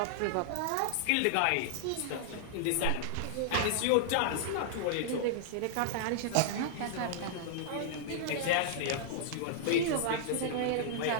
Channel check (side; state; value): both; different; correlation -0.01